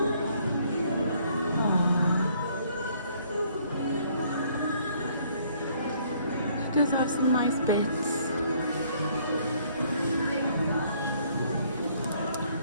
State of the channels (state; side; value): inverted; both; correlation -0.64